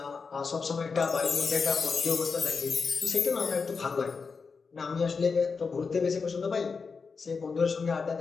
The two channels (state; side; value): quieter; right; 5.0 dB